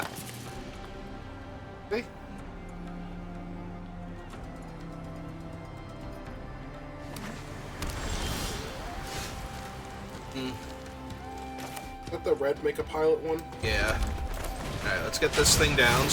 Okay. Let the red make a pilot one? Yeah. Alright, let's get this thing down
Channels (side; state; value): both; identical; correlation 1.00